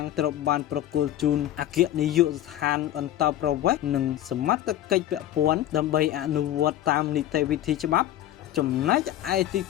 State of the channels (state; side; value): quieter; right; 12.6 dB